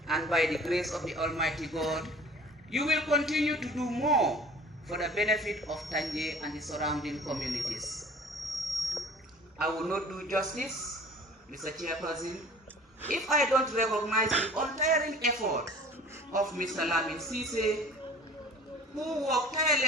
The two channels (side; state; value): both; normal; correlation 0.45